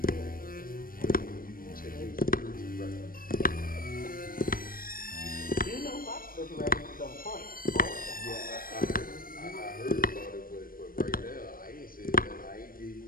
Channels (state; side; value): late; right; 0.41 ms